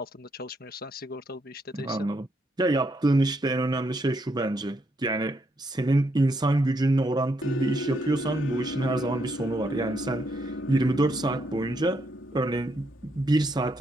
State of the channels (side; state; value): both; normal; correlation 0.77